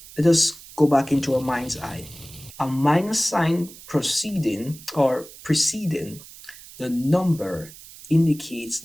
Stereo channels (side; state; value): right; noise; hiss, 18 dB below the sound